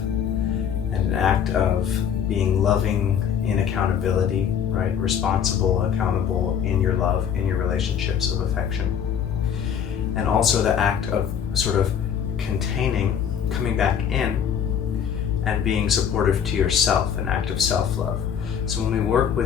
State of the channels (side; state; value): right; quieter; 8.2 dB